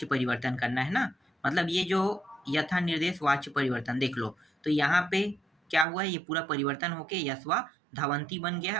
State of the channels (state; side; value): drops out; left; at 5.9 s